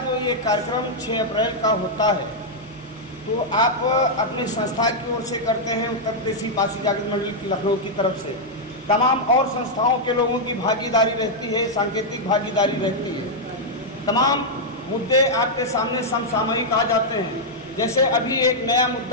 ये कार्यक्रम 6 अप्रैल का होता है तो आप अपनी संस्था की ओर से करते हैं, उत्तर प्रदेशी पारसी जागृत मंडली लखनऊ की तरफ से तमाम और संस्थाओं के लोगों की भागीदारी रहती है, सांकेतिक भागीदारी रहती है। तमाम मुद्दे आपके सामने समसामयिक आ जाते हैं। जैसे अभी एक नया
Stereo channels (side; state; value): both; normal; correlation -0.04